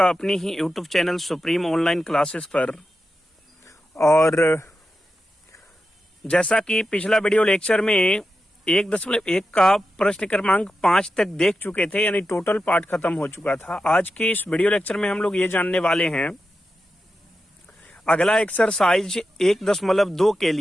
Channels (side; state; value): both; normal; correlation 0.90